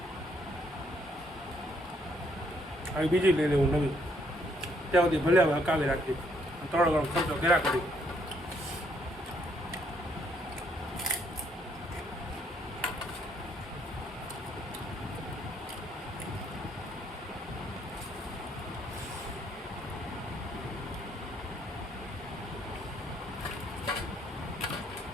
આવી બીજી લઈ લેવું નવી. ત્યાં સુધી ભલે હવે હકાવી રાખી, થોડો ઘણો ખર્ચો કર્યા કરી.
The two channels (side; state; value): both; normal; correlation 0.70